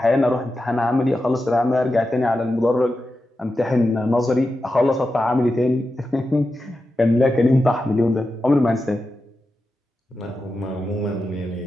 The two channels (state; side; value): normal; both; correlation 0.90